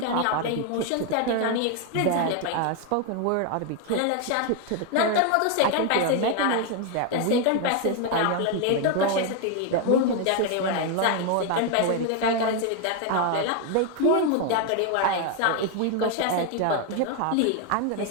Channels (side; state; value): both; different; correlation 0.01